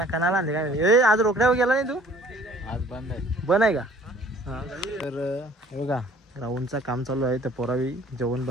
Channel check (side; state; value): both; normal; correlation 0.53